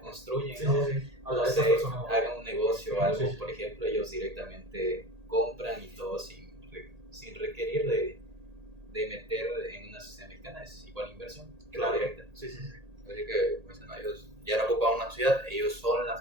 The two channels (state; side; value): late; left; 1.8 ms